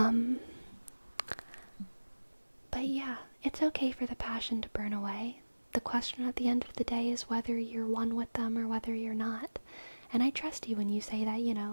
But yeah, it's okay for the passion to burn away. The question at the end of the day is whether you're one with them or whether you're not. And I trust you when you say that, you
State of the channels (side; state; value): both; inverted; correlation -1.00